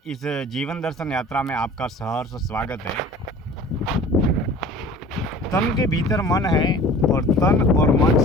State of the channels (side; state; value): both; normal; correlation 0.44